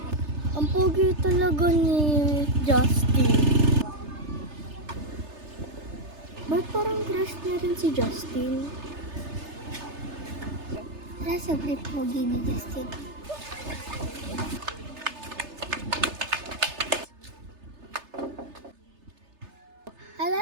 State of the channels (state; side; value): late; left; 3.3 ms